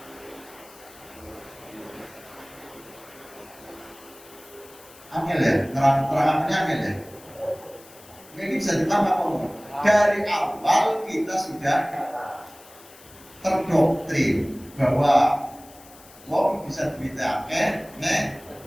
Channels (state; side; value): noise; left; hiss, 22 dB below the sound